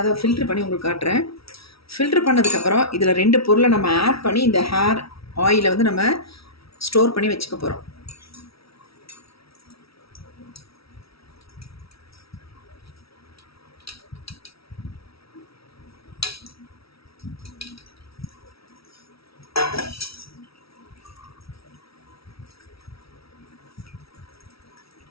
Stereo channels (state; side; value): late; right; 0.76 ms